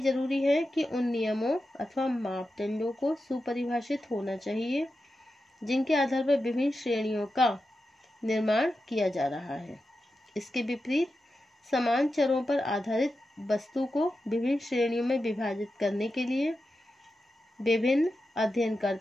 जरूरी है कि उन नियमों अथवा मापदंडों को सुपरिभाषित होना चाहिए जिनके आधार पर विभिन्न श्रेणियों का निर्माण किया जा रहा है. इसके विपरीत समान चरों पर आधारित वस्तु को विभिन्न श्रेणियों में विभाजित करने के लिए विभिन्न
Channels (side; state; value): both; normal; correlation 0.90